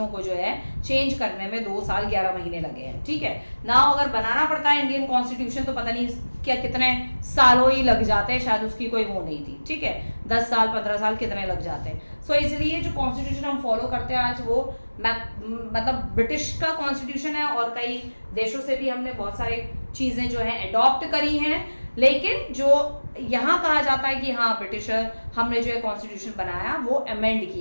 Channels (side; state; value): both; inverted; correlation -1.00